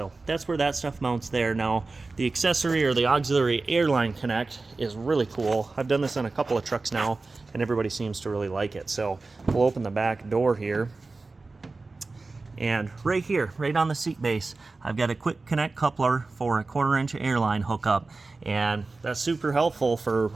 that's where that stuff mounts there. Now, the accessory or the auxiliary airline connect is really cool. I've done this on a couple of trucks now, and everybody seems to really like it. So we'll open the back door here, and right here, right on the seat base, I've got a quick connect coupler for a 1/4-inch airline hookup, and that's super helpful for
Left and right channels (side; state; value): left; quieter; 3.6 dB